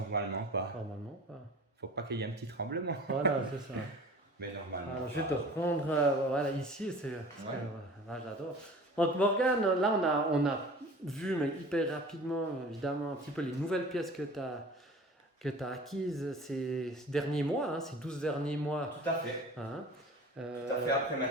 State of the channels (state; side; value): normal; both; correlation 0.42